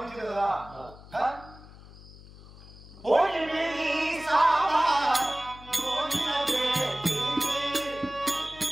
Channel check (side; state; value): left; noise; hum, 19 dB below the sound